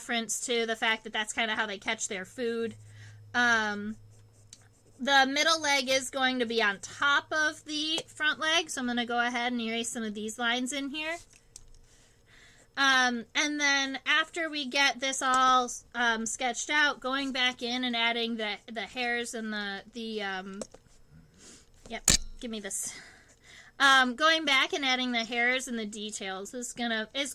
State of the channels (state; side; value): identical; both; correlation 1.00